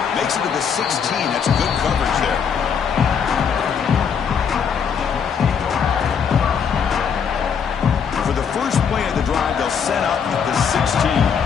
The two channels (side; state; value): right; quieter; 6.9 dB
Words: Makes it to the 16. That's good coverage there. For the first play of the drive, they'll set up at the 16.